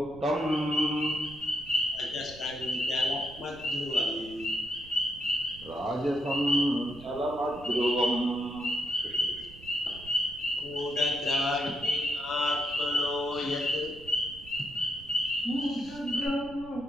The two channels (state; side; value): noise; right; rumble, 18 dB below the sound